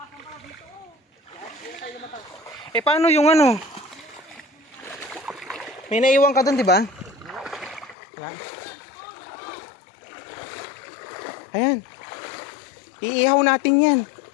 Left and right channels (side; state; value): right; drops out; at 8.0 s